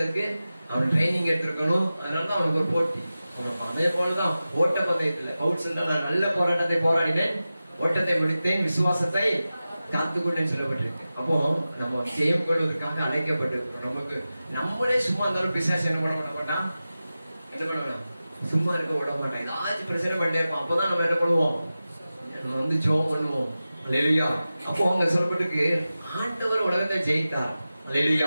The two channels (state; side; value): inverted; both; correlation -0.94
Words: அவன் ட்ரைனிங் எடுத்திருக்கணும். அதனாலதான் அவனுக்கு ஒரு போட்டி. அதே போலதான் ஓட்ட பந்தயத்துல பவுல் சொல்ற, நான் நல்ல போராட்டத்தை போராடினேன், ஓட்டத்தை முடித்தேன், விசுவாசத்தை காத்துக்கொண்டேன்னு சொல்லப்பட்டிருக்கு. அப்போ நம்ம ஜெயம் கொள்வதற்காக அழைக்கப்பட்டிருக்கோம். நமக்கு நம்மளே சும்மா இருந்தாலும் பிசாசு என்ன பண்ண மாட்டான், என்ன பண்ணலாம், சும்மா இருக்க விட மாட்டான். ஏதாச்சும் பிரச்சனை பண்ணிட்டே இருப்போம். அப்பதான் நம்ம என்ன பண்ணுவோம், நம்ம வந்து ஜெபம் பண்ணுவோம். அல்லேலூயா. அப்போ அவங்க சொல்லப்பட்டிருக்கு, ஆண்டவர் உலகத்தை ஜெயித்தார்.